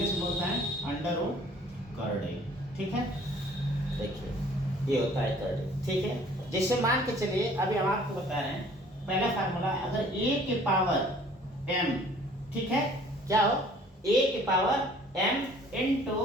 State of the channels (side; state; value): both; normal; correlation 0.54